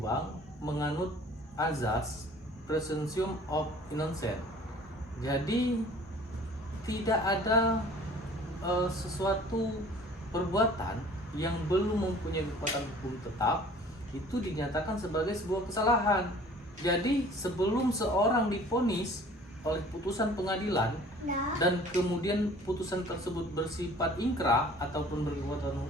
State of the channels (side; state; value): both; normal; correlation 0.50